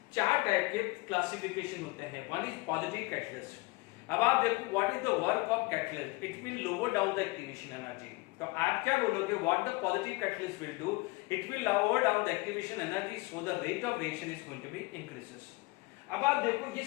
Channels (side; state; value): right; quieter; 24.0 dB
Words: चार टाइप के क्लासिफिकेशन होते हैं। One is positive catalyst. अब आप देखो what is the work of catalyst, it will lower down the activation energy. तो आप क्या बोलोगे, what the positive catalyst will do, it will lower down the activation energy so the rate of reaction is going to be increases. अब आप देखो ये